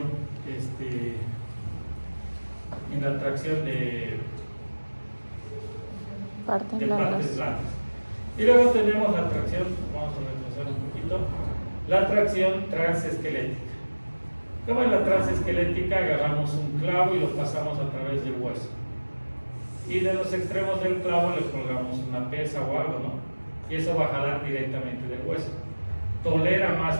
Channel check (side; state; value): both; inverted; correlation -1.00